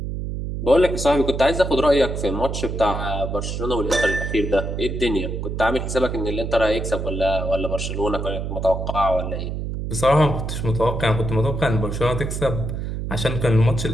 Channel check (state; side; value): noise; right; hum, 4 dB below the sound